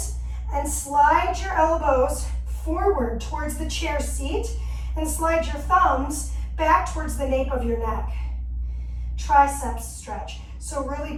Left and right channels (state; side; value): identical; both; correlation 1.00